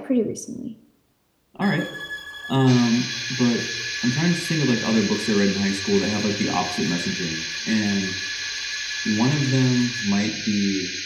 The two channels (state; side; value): identical; both; correlation 1.00